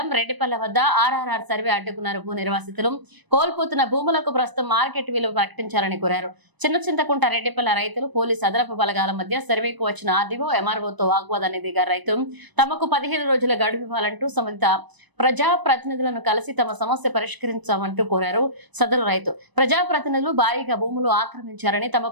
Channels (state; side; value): late; left; 1.0 ms